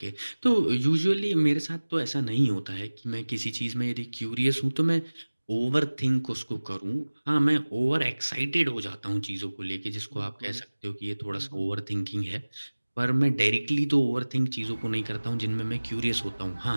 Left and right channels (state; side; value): inverted; both; correlation -1.00